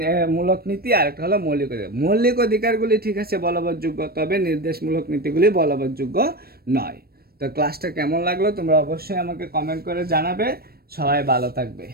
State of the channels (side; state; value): left; late; 0.44 ms